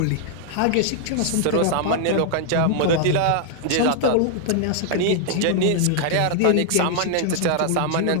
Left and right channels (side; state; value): both; different; correlation 0.00